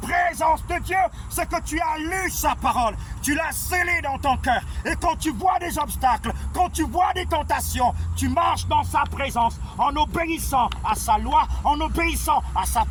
de Dieu, c'est que tu as lu sa parole. Tu l'as scellée dans ton cœur. Et quand tu vois des obstacles, quand tu vois des tentations, tu marches dans sa présence en obéissant à sa loi, en obéissant à sa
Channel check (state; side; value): identical; both; correlation 1.00